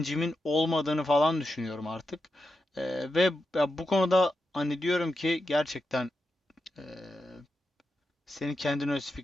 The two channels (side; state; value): both; normal; correlation 0.88